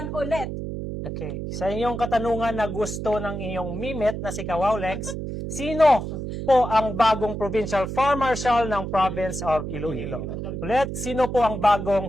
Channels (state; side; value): noise; right; hum, 5 dB below the sound